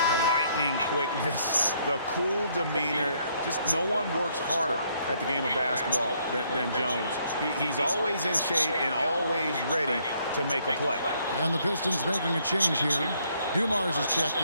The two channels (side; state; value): both; inverted; correlation -0.69